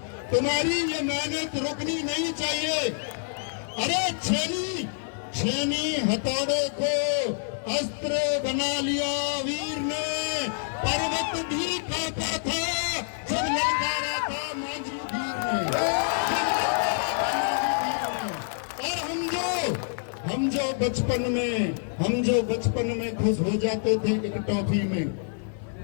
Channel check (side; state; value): right; silent; 60 dB below the other